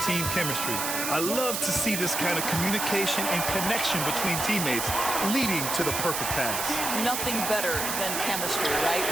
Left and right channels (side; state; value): right; noise; hiss, 2 dB below the sound